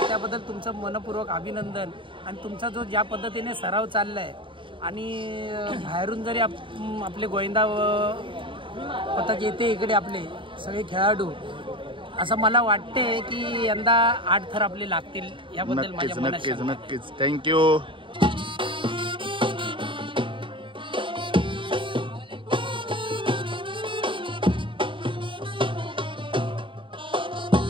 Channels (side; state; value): left; late; 0.25 ms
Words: त्याबद्दल तुमचं मनपूर्वक अभिनंदन. आणि तुमचा जो ज्या पद्धतीने सराव चालला आहे आणि बाहेरून जरी आपले गोविंदा पथक येते इकडे आपले सगळे खेळाडू, असं मला वाटते की यंदा 8 थर आपले लागतील. याबद्दल माझ्या मनात नक्कीच नक्कीच. थँक्यू.